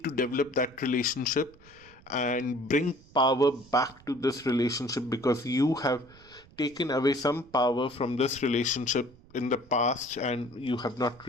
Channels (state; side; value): noise; right; rumble, 25 dB below the sound